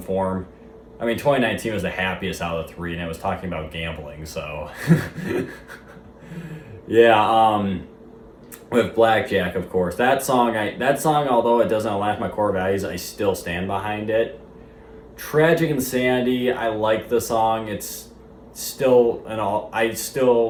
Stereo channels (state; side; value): identical; both; correlation 1.00